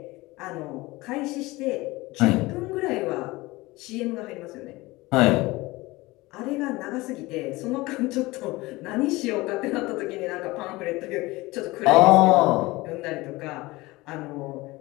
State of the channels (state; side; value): quieter; right; 21.0 dB